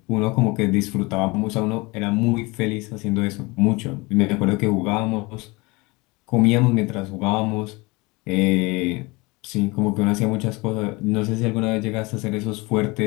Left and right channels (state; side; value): quieter; right; 24.9 dB